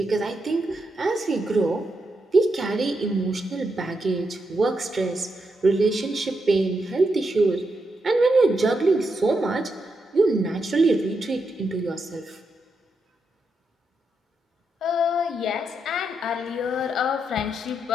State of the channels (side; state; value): both; normal; correlation 0.83